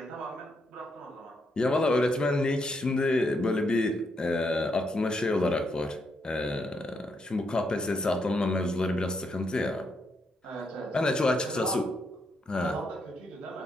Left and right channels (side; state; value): both; normal; correlation 0.79